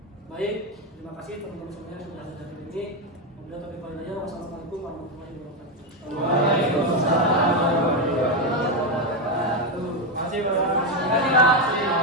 Baik, terima kasih teman-teman semuanya sudah hadir hari ini. Wassalamualaikum warahmatullahi wabarakatuh. Waalaikumsalam.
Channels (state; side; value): normal; both; correlation 0.08